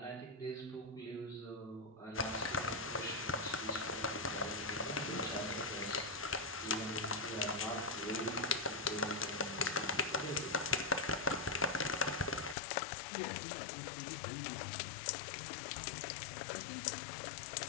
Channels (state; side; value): drops out; right; at 12.6 s